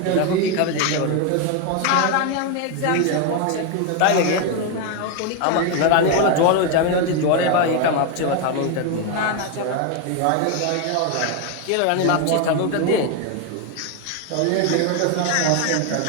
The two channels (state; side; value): different; both; correlation 0.01